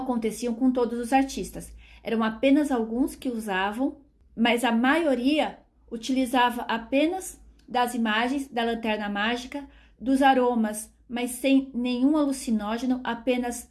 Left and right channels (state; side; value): identical; both; correlation 1.00